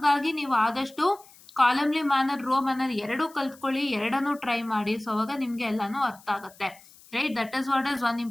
ನೀವು ಆದಷ್ಟು ಕಾಲಮ್ಲಿ ಮ್ಯಾನರ್, ರೋ ಮ್ಯಾನರ್ ಎರಡೂ ಕಲ್ತ್ಕೊಳ್ಳಿ, ಎರಡನ್ನೂ ಟ್ರೈ ಮಾಡಿ. ಸೊ ಅವಾಗ ನಿಮಗೆ ಎಲ್ಲನೂ ಅರ್ಥ ಆಗುತ್ತೆ. Right, that is what is one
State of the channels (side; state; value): left; noise; hiss, 24 dB below the sound